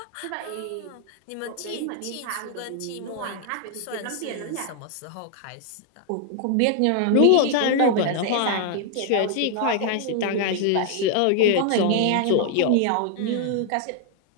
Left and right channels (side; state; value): both; different; correlation 0.00